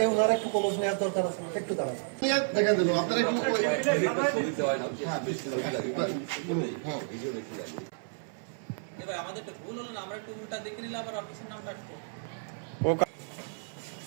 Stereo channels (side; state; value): left; silent; 57 dB below the other